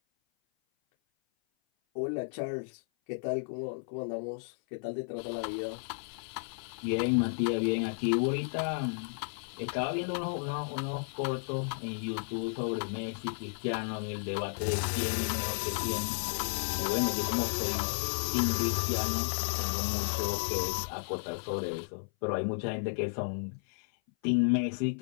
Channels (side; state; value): right; silent; 56 dB below the other